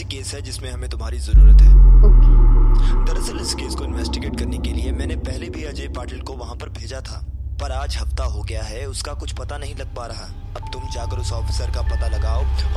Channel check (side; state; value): both; identical; correlation 1.00